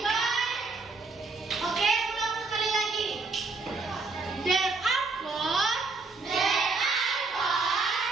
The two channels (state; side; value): quieter; left; 3.9 dB